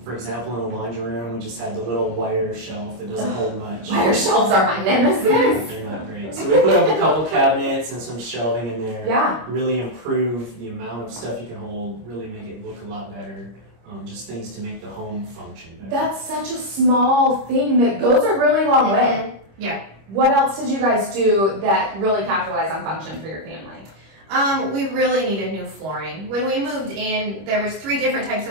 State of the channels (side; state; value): left; late; 25 ms